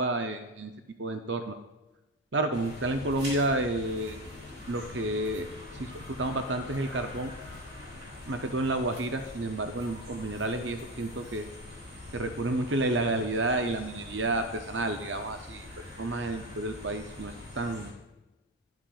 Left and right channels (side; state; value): both; normal; correlation 0.18